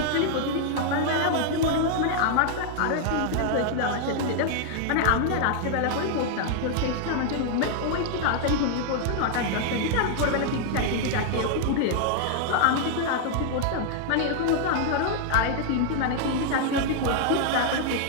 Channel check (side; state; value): both; different; correlation 0.00